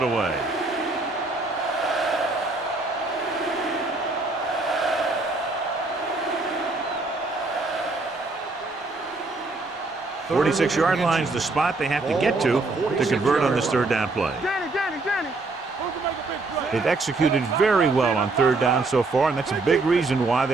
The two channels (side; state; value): left; quieter; 3.4 dB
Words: away. The 46-yard line is the spot they have to get to convert on this third down play. Danny. They've executed very well on third down so far, and that's a big reason why